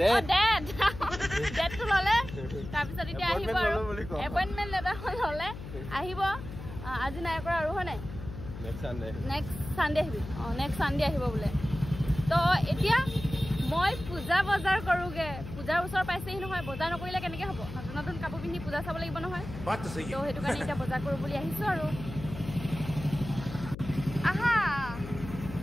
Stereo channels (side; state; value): left; noise; hum, 10 dB below the sound